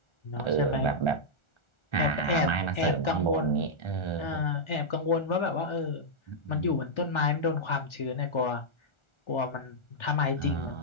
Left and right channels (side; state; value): right; late; 1.4 ms